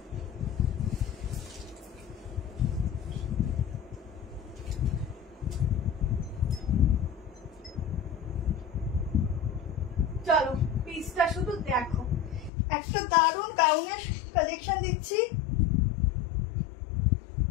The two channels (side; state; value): right; drops out; at 12.5 s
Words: চলো পিসটা শুধু দেখো। একটা দারুণ গাউনের কালেকশন দিচ্ছি,